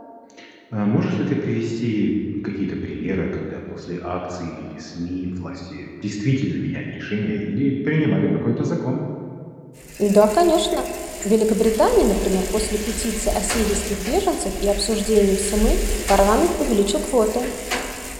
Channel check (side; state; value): both; identical; correlation 1.00